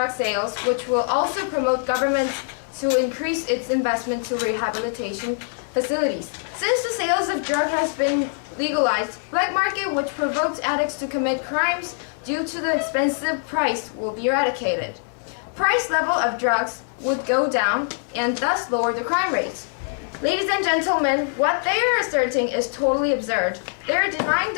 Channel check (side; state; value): right; silent; 63 dB below the other